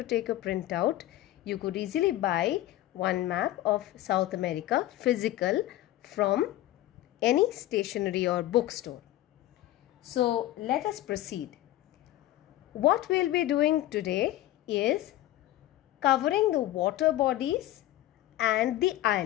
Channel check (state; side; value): quieter; right; 14.8 dB